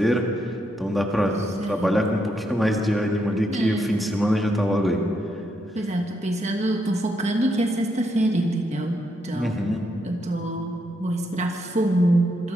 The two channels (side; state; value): both; normal; correlation 0.79